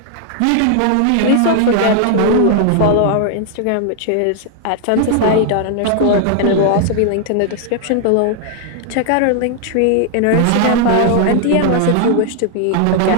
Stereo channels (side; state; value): both; different; correlation 0.00